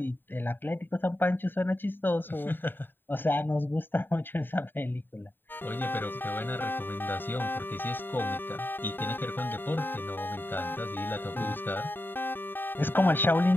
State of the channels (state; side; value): late; right; 0.094 ms